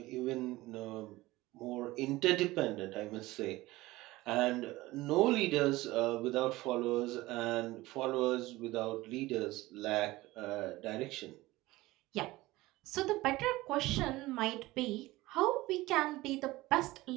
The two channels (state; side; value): quieter; left; 19.0 dB